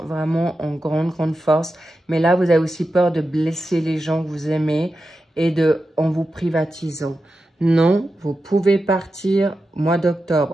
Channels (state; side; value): normal; both; correlation 0.91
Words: vraiment en grande, grande force. Mais là, vous avez aussi peur de blesser les gens que vous aimez et en vous privatisant. Non, vous pouvez partir mois